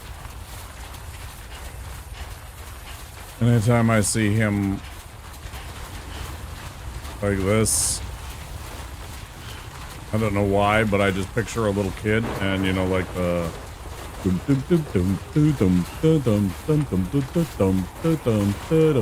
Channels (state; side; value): identical; both; correlation 1.00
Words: anytime I see him like this, I don't know why, but I just picture a little kid and, you know, like the